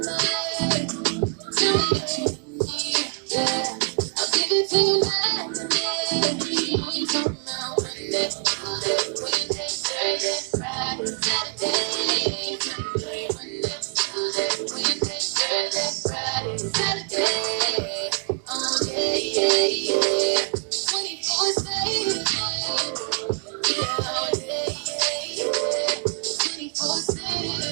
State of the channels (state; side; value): quieter; left; 39.3 dB